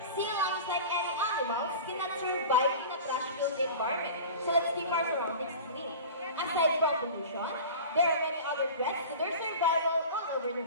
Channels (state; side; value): inverted; both; correlation -0.36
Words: Sea lions, like any animals, cannot survive in a trash-filled environment. So let's keep our surroundings clean. Aside from pollution, there are many other threats to their survival all over the